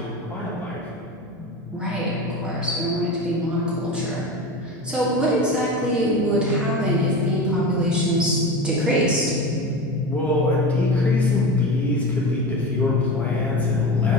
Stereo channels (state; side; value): normal; both; correlation 0.27